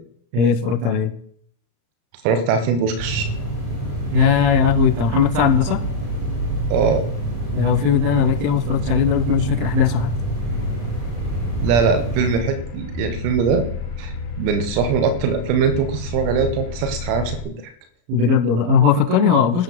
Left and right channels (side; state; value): left; late; 34 ms